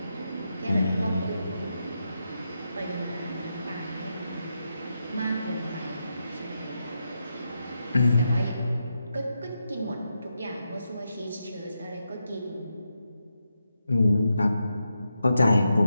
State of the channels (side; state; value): both; inverted; correlation -0.85